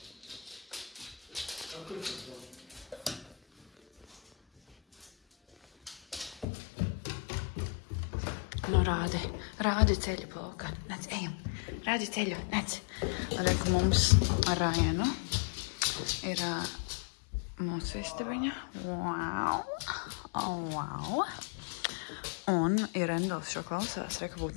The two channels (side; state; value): right; drops out; at 6.5 s